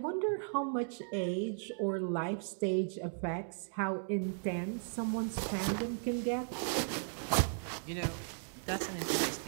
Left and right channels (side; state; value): left; silent; digital silence